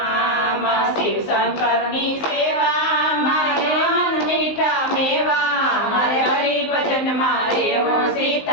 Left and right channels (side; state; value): right; late; 19 ms